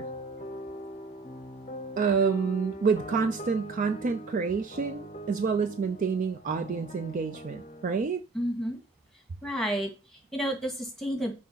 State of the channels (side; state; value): left; quieter; 3.9 dB